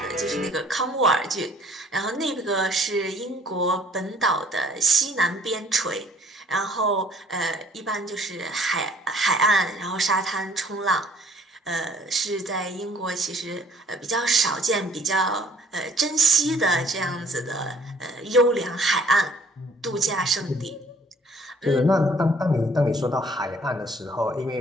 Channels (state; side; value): normal; both; correlation 0.58